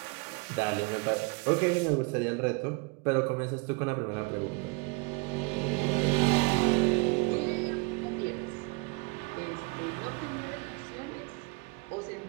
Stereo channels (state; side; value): quieter; left; 28.8 dB